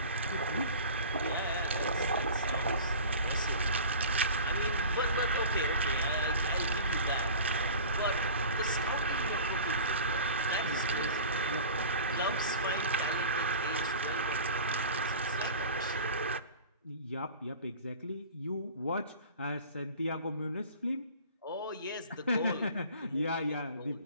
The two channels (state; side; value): inverted; both; correlation -0.40